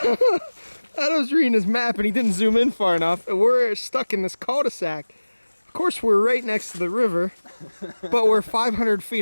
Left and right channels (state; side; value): inverted; both; correlation -1.00